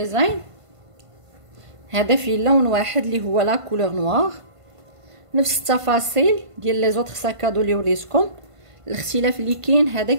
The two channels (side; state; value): left; late; 1.5 ms